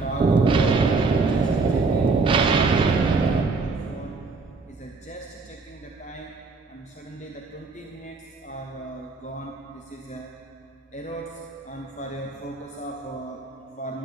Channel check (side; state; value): left; quieter; 4.0 dB